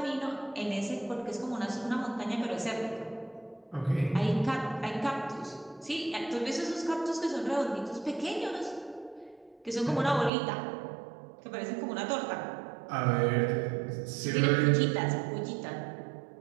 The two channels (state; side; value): drops out; left; at 10.3 s